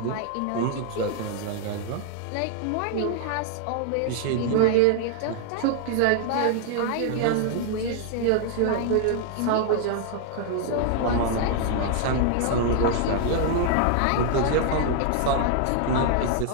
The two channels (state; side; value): different; both; correlation 0.00